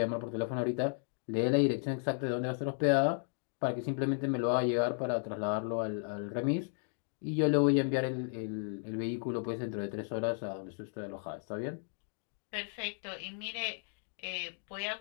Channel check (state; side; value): silent; right; 55 dB below the other